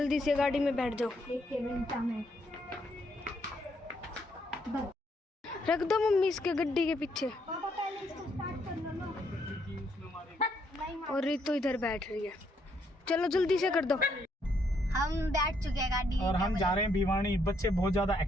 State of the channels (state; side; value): normal; both; correlation 0.73